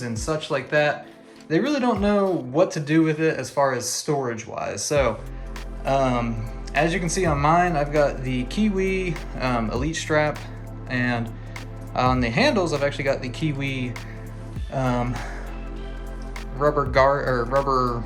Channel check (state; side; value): identical; both; correlation 1.00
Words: and such like that, they really don't know what to do with it as far as storage wise. So as you can see on mine, I've got the Kiwi Elite strap, and on the handles I've actually got the Kiwi rubber